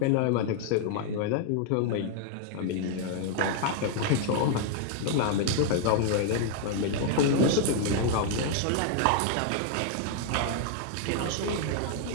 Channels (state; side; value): different; both; correlation 0.00